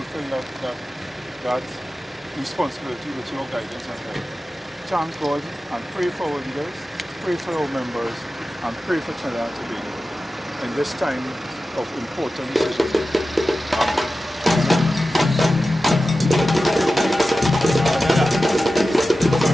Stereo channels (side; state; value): both; normal; correlation 0.94